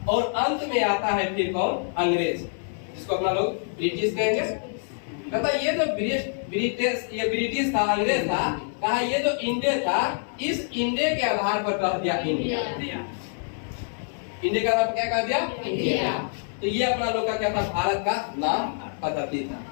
और अंत में आता है फिर कौन, अंग्रेज, जिसको अपना लोग ब्रिटिश कहेंगे। कहता ये जो ब्रिटिश था, अंग्रेज था, कहा ये जो इंडिया था इस इंडिया के आधार पर कह दिया इंडिया। इंडिया का नाम क्या कह दिया, इंडिया। तो ये अपना लोग का क्या था, भारत का नाम। पद्धति था,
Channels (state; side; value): silent; right; 60 dB below the other